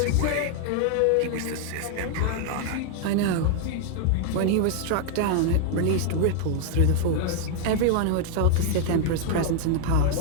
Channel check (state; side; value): different; both; correlation 0.00